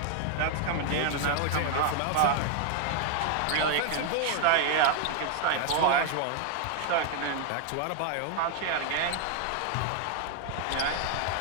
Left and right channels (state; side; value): different; both; correlation 0.00